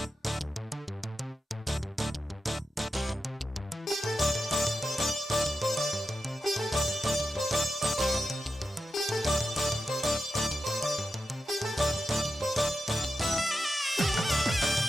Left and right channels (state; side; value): normal; both; correlation 0.89